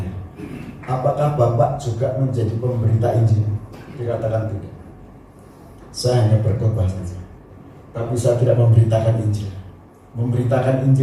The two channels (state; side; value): identical; both; correlation 1.00